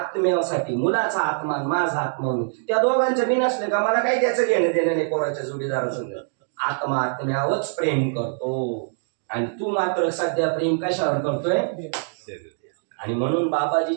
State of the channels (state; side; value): silent; left; 63 dB below the other